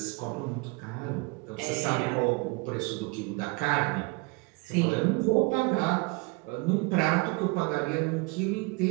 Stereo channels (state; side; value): quieter; left; 27.5 dB